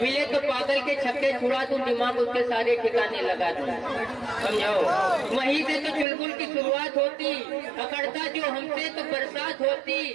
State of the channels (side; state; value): left; drops out; at 6.1 s